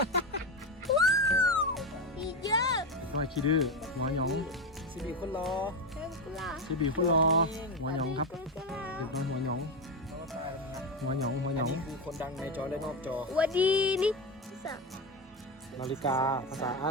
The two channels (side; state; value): both; normal; correlation 0.14